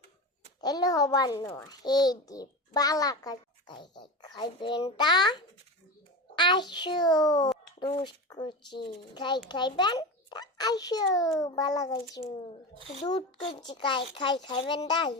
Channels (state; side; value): normal; both; correlation 0.25